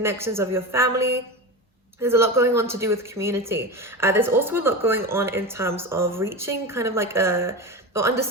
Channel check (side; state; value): both; normal; correlation 0.23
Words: of your family. There's a lot going on to do with community. There's also a lot going on in terms of reaching kind of like or